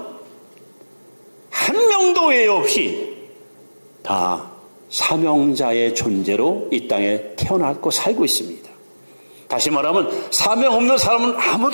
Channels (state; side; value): inverted; both; correlation -1.00